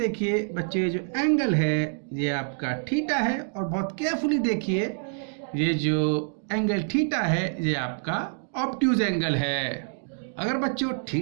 बच्चों ये जो एंगल है ये आपका थीटा है और बहुत केयरफुली देखिए ये जो एंगल थीटा है ये आपका ऑब्ट्यूज एंगल है। अगर बच्चों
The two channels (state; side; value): silent; left; digital silence